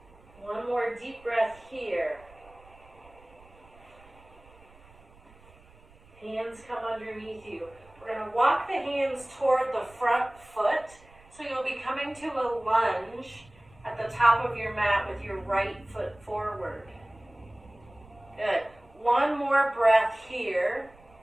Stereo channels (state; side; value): noise; right; rumble, 25 dB below the sound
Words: One more deep breath here. Hands come underneath you. We're going to walk the hands toward the front foot. So you'll be coming to a lunge at the top of your mat with your right foot forward. Good. One more breath here.